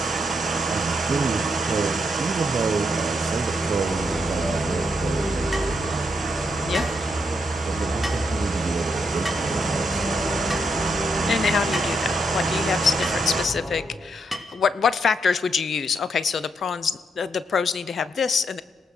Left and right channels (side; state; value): both; normal; correlation 0.79